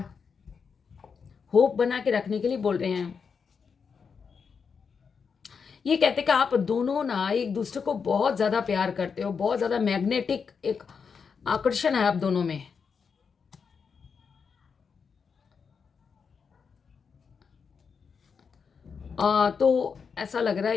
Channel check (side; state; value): right; quieter; 5.9 dB